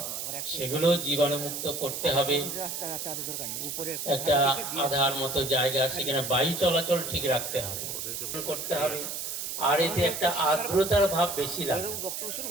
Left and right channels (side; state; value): right; noise; hiss, 5 dB below the sound